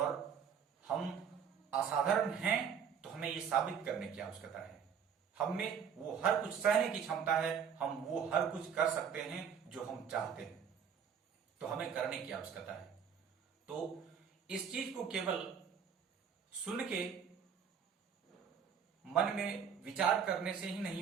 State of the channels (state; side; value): quieter; left; 7.3 dB